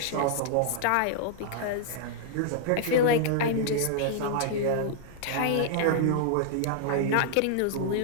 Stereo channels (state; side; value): different; both; correlation -0.01